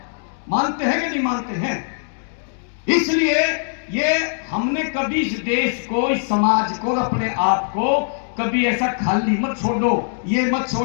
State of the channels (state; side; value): silent; right; digital silence